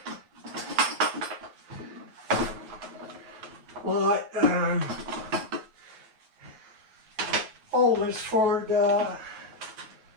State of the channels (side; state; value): left; late; 9.1 ms